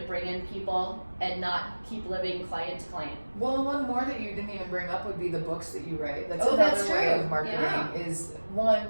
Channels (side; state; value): both; inverted; correlation -1.00